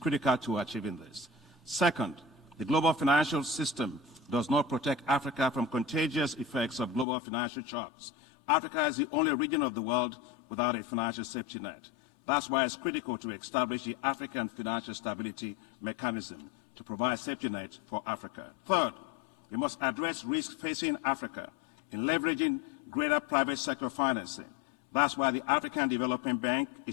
to achieving this. Second, the global financial system does not protect Africa from contagious effects of global financial shocks. Africa is the only region of the world without a financial safety net. That's why it's critical to establish the African Financial Stability Mechanism to provide safety net for Africa. Third, we must address risks facing Africa in leveraging greater private sector financing. That's why the African Development Bank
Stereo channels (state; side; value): drops out; right; at 7.1 s